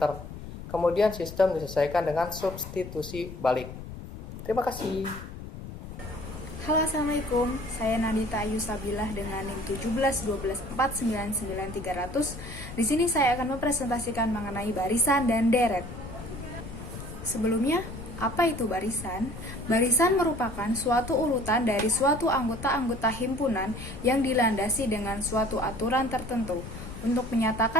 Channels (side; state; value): left; noise; rumble, 11 dB below the sound